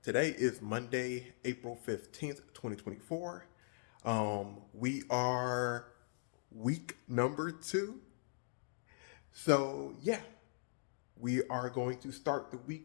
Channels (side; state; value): right; silent; digital silence